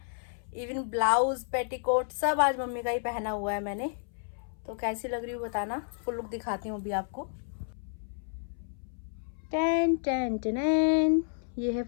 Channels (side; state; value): right; silent; 57 dB below the other